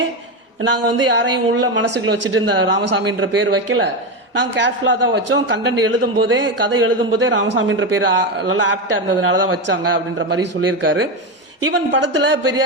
நாங்கள் வந்து யாரையும் உள்ள மனசுக்குள்ள வச்சுட்டு இந்த ராமசாமின்ற பேர் வைக்கல. நாங்கள் கேர்ஃபுல்லாக தான் வச்சோம். கண்டென்ட் கதை எழுதும் போதே ராமசாமின்ற பேர் நல்லா ஆப்டா இருந்ததுனால தான் வச்சாங்க அப்படின்ற மாதிரி சொல்லியிருக்காரு. ஈவன் படத்துல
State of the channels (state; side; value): normal; both; correlation 0.14